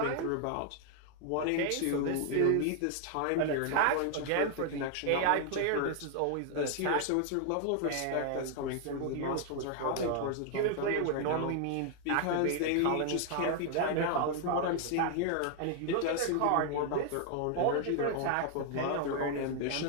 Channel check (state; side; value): different; both; correlation 0.00